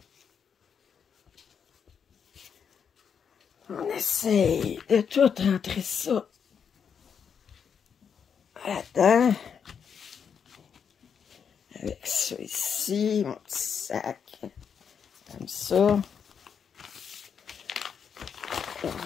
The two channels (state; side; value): quieter; right; 7.1 dB